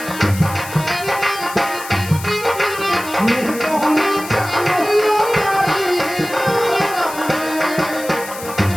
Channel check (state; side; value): noise; left; hiss, 13 dB below the sound